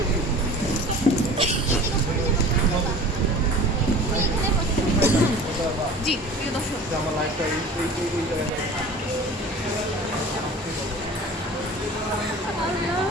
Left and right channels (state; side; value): normal; both; correlation 0.41